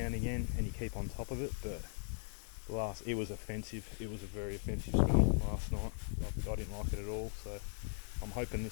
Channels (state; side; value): silent; right; 52 dB below the other